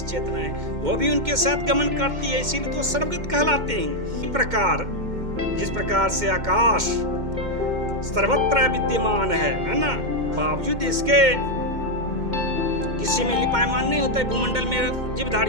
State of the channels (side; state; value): left; late; 2.1 ms